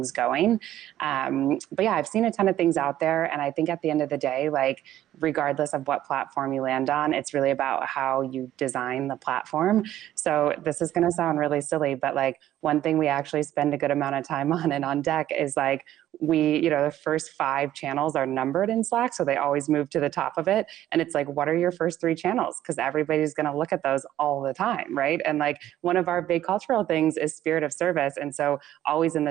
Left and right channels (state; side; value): quieter; left; 12.8 dB